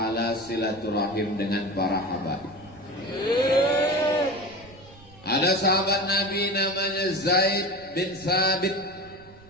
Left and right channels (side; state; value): right; noise; rumble, 23 dB below the sound